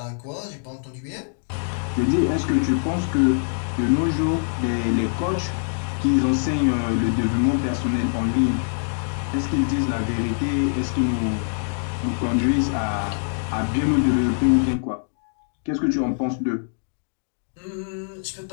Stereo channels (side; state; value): right; silent; digital silence